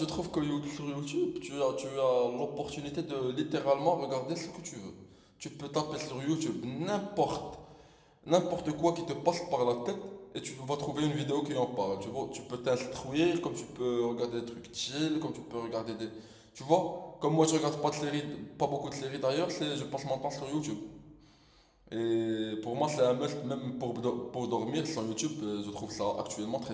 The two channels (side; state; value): both; identical; correlation 1.00